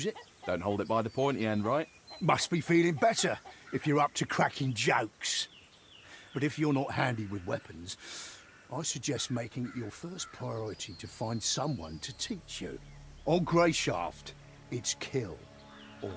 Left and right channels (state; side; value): identical; both; correlation 1.00